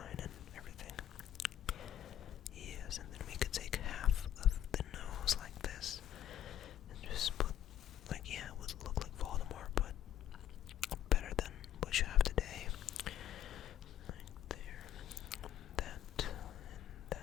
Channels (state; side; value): quieter; right; 10.9 dB